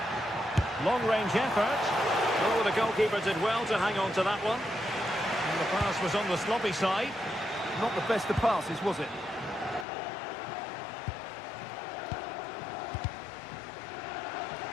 Long-range effort. Oh, the goalkeeper did well to hang on to that one. And the pass was on the sloppy side. Not the best of passes, was it?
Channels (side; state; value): right; drops out; at 9.9 s